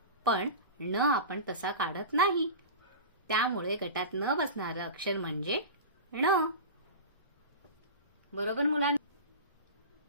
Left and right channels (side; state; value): both; inverted; correlation -0.30